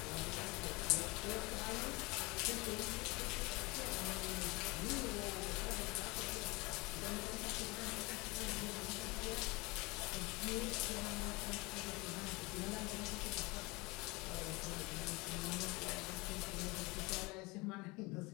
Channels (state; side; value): quieter; right; 24.8 dB